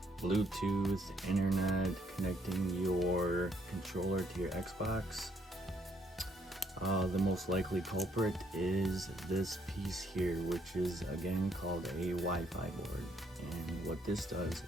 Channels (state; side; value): normal; both; correlation 0.70